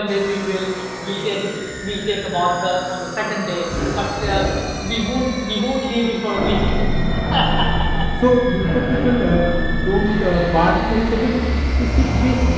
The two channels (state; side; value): identical; both; correlation 1.00